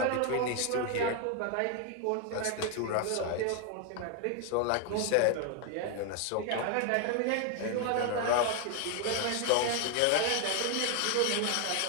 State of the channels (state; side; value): different; both; correlation 0.01